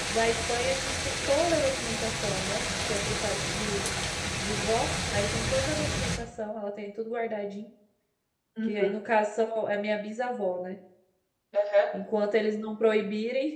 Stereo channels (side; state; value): both; identical; correlation 1.00